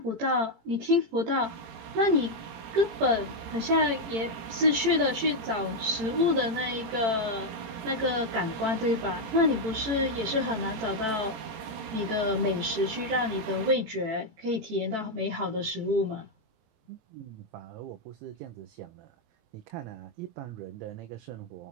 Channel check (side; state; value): left; late; 18 ms